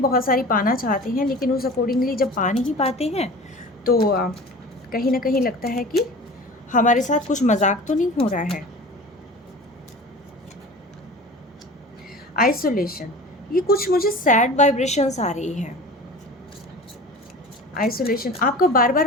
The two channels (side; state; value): both; normal; correlation 0.38